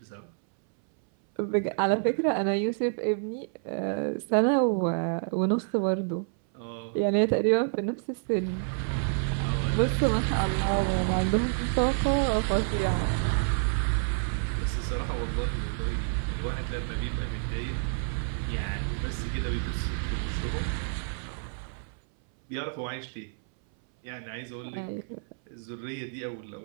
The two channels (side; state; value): left; silent; 59 dB below the other